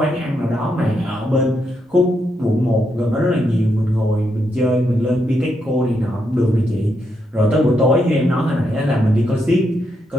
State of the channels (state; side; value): normal; both; correlation 0.81